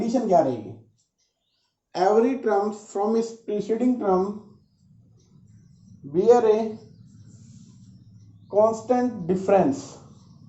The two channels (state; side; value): identical; both; correlation 1.00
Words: क्या रहेगी, every term from its preceding term bear a constant difference